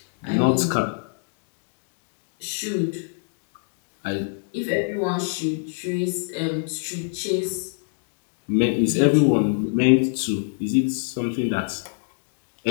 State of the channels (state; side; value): silent; right; digital silence